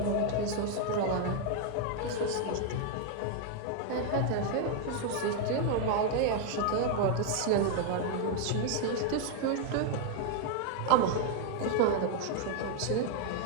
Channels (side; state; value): both; different; correlation 0.00